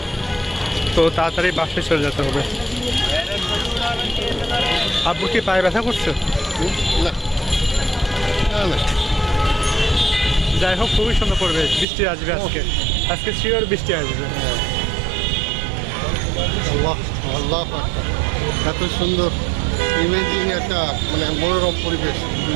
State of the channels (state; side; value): drops out; left; at 11.9 s